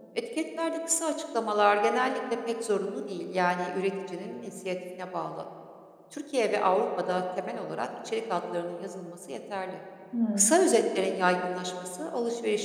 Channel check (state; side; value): identical; both; correlation 1.00